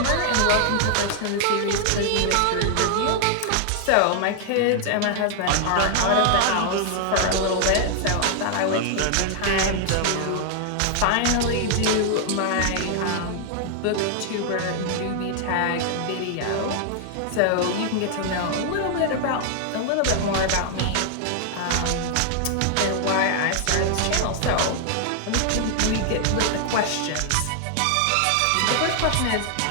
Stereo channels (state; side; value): different; both; correlation 0.00